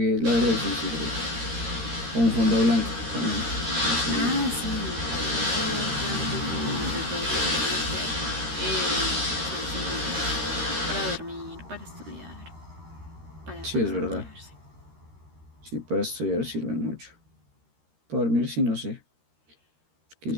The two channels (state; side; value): late; left; 13 ms